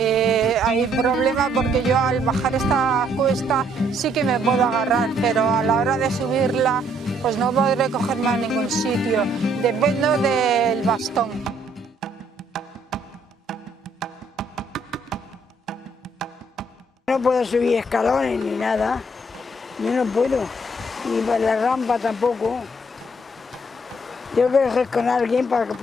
Hay problema porque yo al bajar esta cuesta sí que me puedo agarrar, pero a la hora de subirla pues no podré cogerme a ningún sitio, dependo del bastón. No puedo subir escalones ni nada, yo no puedo, ni por la rampa tampoco. Tengo que ir con alguien para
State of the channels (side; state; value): both; normal; correlation 0.67